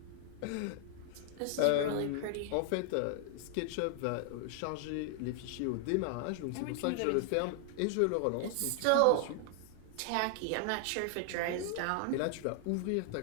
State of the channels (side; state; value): both; different; correlation 0.00